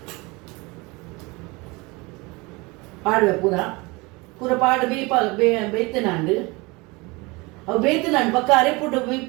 ಪಾಡುವೆ ಪೂರ ಪಾಡು ಬೇಯ್ತನಾಂಡು ಅವು ಬೇಯ್ತನಾಂಡು ಪಕ್ಕ ಅರೆಪುಟ್ಟು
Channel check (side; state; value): left; quieter; 25.2 dB